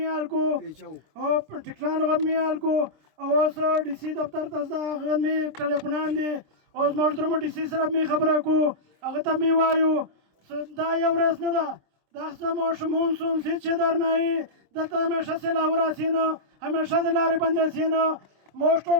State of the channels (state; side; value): late; left; 26 ms